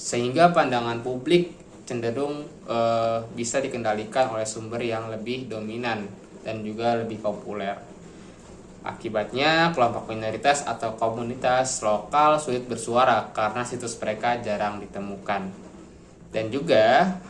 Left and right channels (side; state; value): both; identical; correlation 1.00